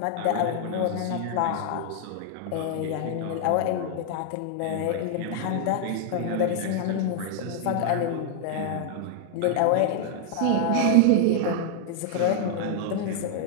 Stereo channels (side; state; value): both; different; correlation 0.00